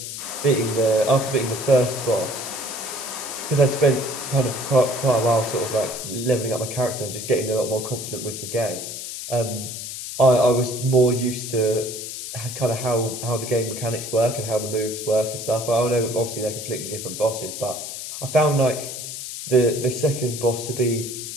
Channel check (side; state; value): left; noise; hiss, 8 dB below the sound